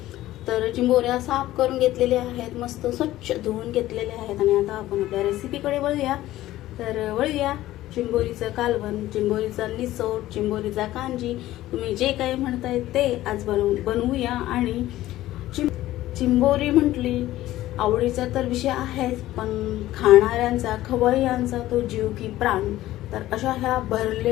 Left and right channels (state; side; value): quieter; right; 15.2 dB